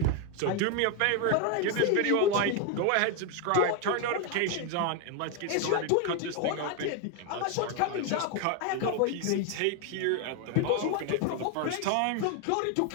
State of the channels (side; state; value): both; different; correlation 0.01